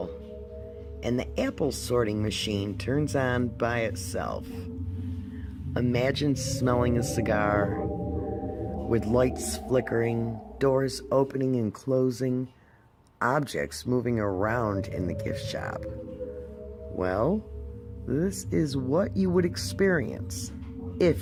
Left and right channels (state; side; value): identical; both; correlation 1.00